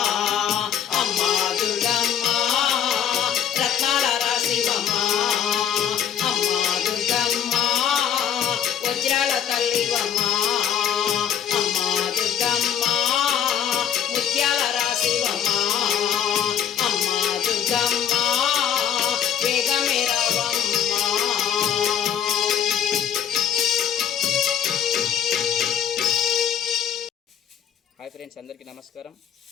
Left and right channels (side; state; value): right; quieter; 9.1 dB